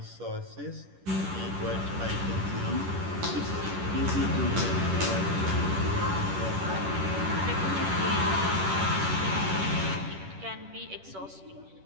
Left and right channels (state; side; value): late; left; 10 ms